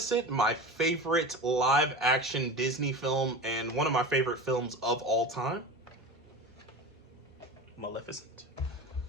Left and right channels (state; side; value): normal; both; correlation 0.30